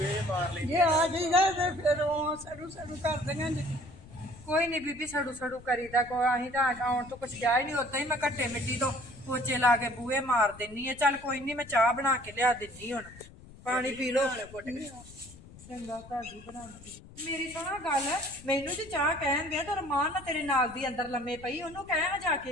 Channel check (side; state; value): left; noise; rumble, 19 dB below the sound